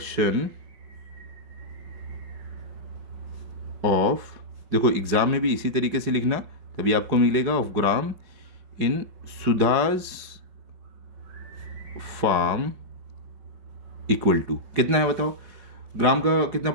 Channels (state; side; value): late; left; 5.3 ms